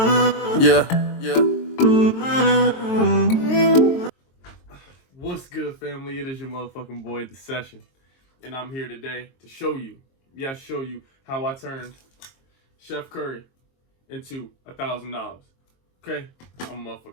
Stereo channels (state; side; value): late; right; 22 ms